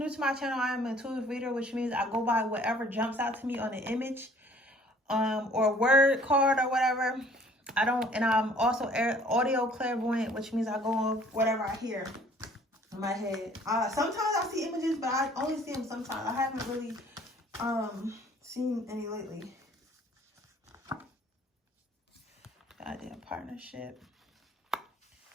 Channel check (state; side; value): normal; both; correlation 0.55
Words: to my channel, I am an intuitive reader, which means I go by whatever jumps out to me on an image, or word card or whatever. And I'm also audio clairvoyant, which means I go on whatever I hear in my head. Sometimes I see images, but I only see them sometimes. I haven't really seen any lately. Goddamn partnership.